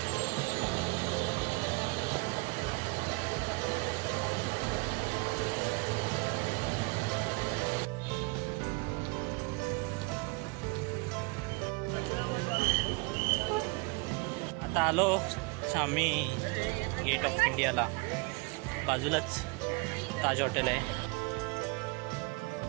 आता आलो आम्ही गेट ऑफ इंडियाला. बाजूलाच ताज हॉटेल आहे.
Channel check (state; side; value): quieter; left; 28.5 dB